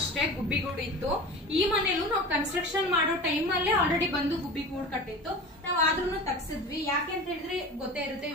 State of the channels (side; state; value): both; normal; correlation 0.34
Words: ಗುಬ್ಬಿಗೂಡು ಇತ್ತು. ಈ ಮನೇಲೂ ನಾವು ಕನ್ಸ್ಟ್ರಕ್ಷನ್ ಮಾಡೋ ಟೈಮ್ ಅಲ್ಲೇ ಆಲ್ರೆಡಿ ಬಂದು ಗುಬ್ಬಿಗೂಡು ಕಟ್ಟಿತ್ತು. ನಾವ್ ಆದ್ರೂ ತಗ್ಸಿದ್ವಿ. ಯಾಕೆ ಅಂತ ಹೇಳಿದ್ರೆ ಗೊತ್ತೇ ಇರುತ್ತೆ,